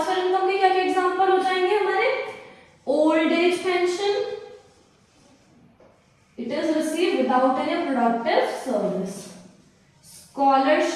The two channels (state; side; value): identical; both; correlation 1.00